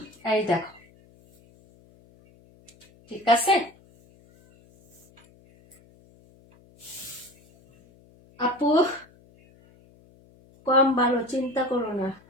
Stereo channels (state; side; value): noise; left; hum, 28 dB below the sound